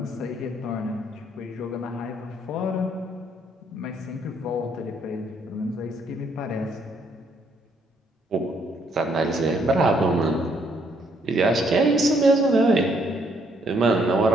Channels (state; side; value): normal; both; correlation 0.69